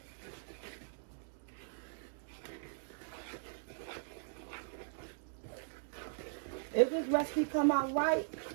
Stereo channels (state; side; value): silent; left; digital silence